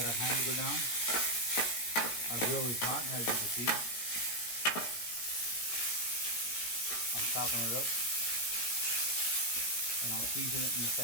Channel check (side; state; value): right; late; 17 ms